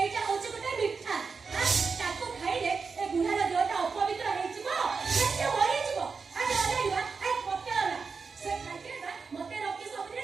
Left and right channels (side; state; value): left; quieter; 5.0 dB